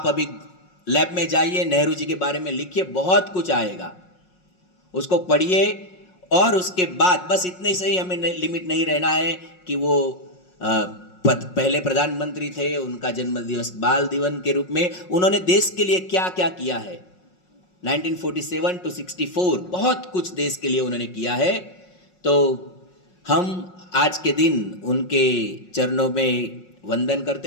अभी लैब में जाइए, नेहरू जी के बारे में लिखिए, बहुत कुछ आएगा, उसको पढ़िए। और उसके बाद बस इतने से ही हमें लिमिट नहीं रहना है कि वो पहले प्रधानमंत्री थे, उनका जन्मदिवस बाल दिवस के रूप में उन्होंने देश के लिए क्या क्या किया है। 1947 to 64 बहुत कुछ देश के लिए उन्होंने किया है। तो हम आज के दिन उनके चरणों में वंदन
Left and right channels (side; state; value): right; late; 5.5 ms